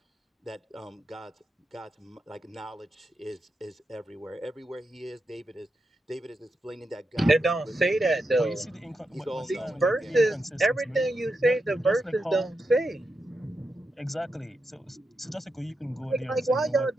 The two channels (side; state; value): both; normal; correlation 0.86